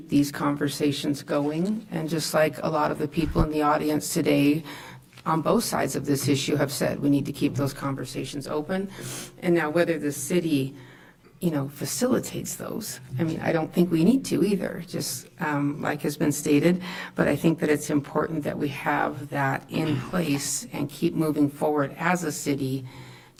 these conversations going. And just like a lot of the people in the audience today on both sides of this issue have said, we need to keep those conversations open. And now whether the city facilitates those. I mean, I don't think we need to either, just like has been stated, but I think that it's important that we have that in place and keep moving forward as a city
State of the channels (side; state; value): both; identical; correlation 1.00